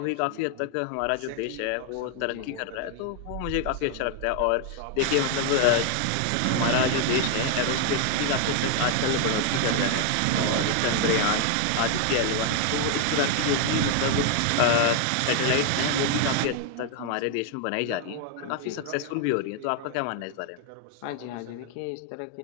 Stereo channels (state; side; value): different; both; correlation 0.00